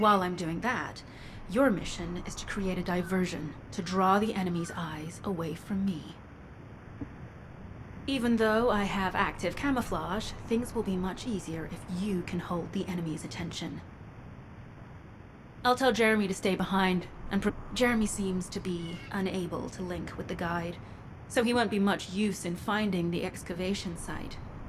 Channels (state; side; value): identical; both; correlation 1.00